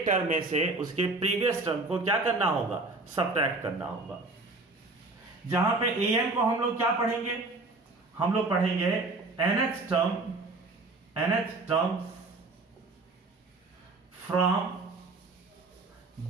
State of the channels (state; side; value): quieter; left; 3.3 dB